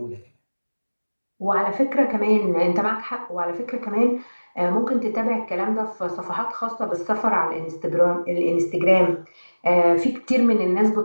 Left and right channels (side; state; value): both; inverted; correlation -1.00